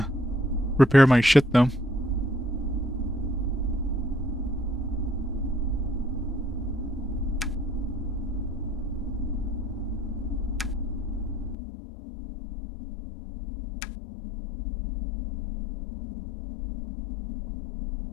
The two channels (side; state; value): right; drops out; at 11.6 s